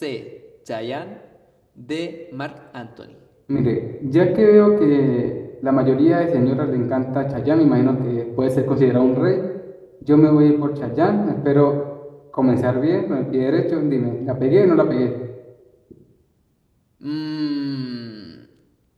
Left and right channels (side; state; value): both; identical; correlation 1.00